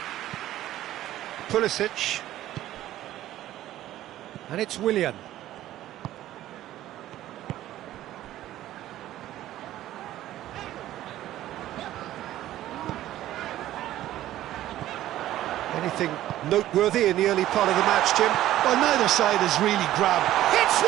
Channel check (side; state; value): left; quieter; 13.9 dB